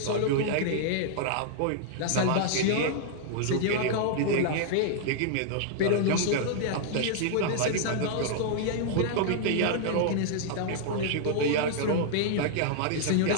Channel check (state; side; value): different; both; correlation -0.01